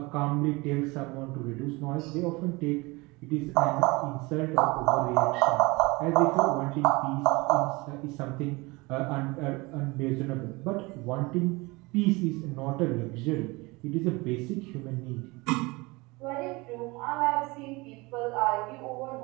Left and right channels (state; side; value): quieter; left; 24.3 dB